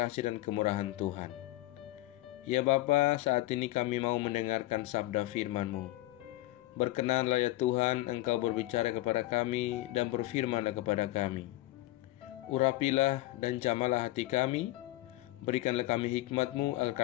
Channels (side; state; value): right; quieter; 17.5 dB